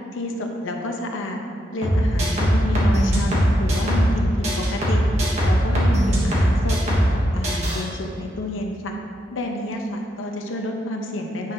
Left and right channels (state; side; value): normal; both; correlation 0.81